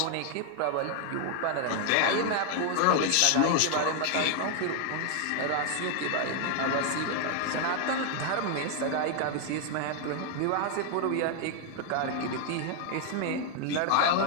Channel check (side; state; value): both; different; correlation 0.00